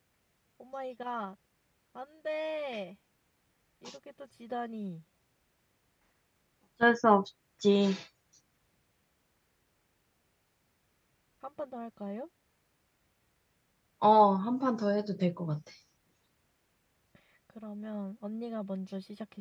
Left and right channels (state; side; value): identical; both; correlation 1.00